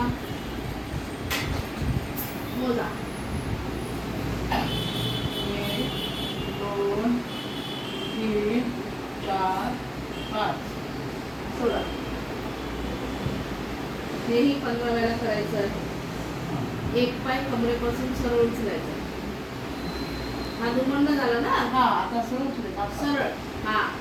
मोजा. 1 2 3 4 5. सोडा. हेही 15 वेळा करायचं आहे. एक पाय कमरेपासून सरळ उचलायचा. हा दुमडणं झाला ना. हा आता सरळ उचलायचा. सरळ. हा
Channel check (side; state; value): both; identical; correlation 1.00